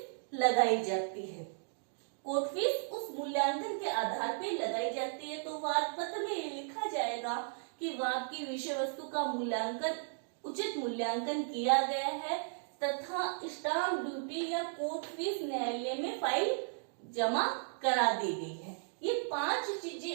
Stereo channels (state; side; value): silent; left; digital silence